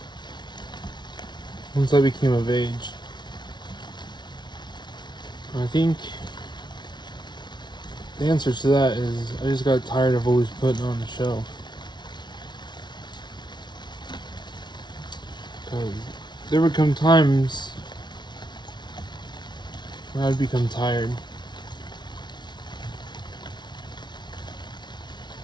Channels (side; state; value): right; late; 0.21 ms